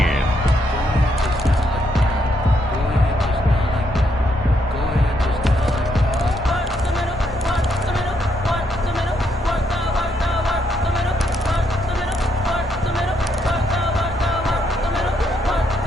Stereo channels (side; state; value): both; normal; correlation 0.76